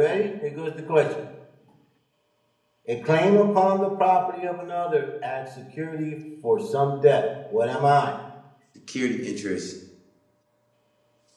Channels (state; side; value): identical; both; correlation 1.00